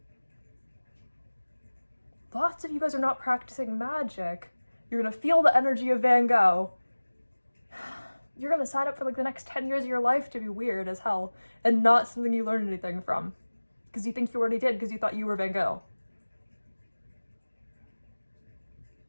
Lots of you guys are not practicing magic. You're gonna feel the energy of Van Gogh. You're gonna sign up for, like, the next 10 years of your life to be weird as hell and not something you learned anything from. Because you think you already did because you thought you were Van Gogh.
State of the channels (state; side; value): inverted; both; correlation -1.00